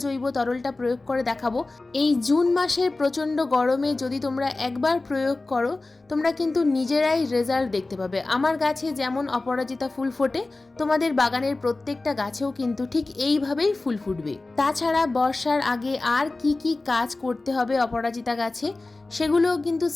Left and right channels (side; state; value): right; quieter; 3.2 dB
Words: জৈব তরলটা প্রয়োগ করে দেখাবো, এই জুন মাসের প্রচণ্ড গরমে যদি তোমরা একবার প্রয়োগ করো, তোমরা কিন্তু নিজেরাই রেজাল্ট দেখতে পাবে। আমার গাছে যেমন অপরাজিতা ফুল ফোটে, তোমাদের বাগানের প্রত্যেকটা গাছেও কিন্তু ঠিক এইভাবেই ফুল ফুটবে। তাছাড়া বর্ষার আগে আর কি কি কাজ করতে হবে অপরাজিতা গাছে, সেগুলোও কিন্তু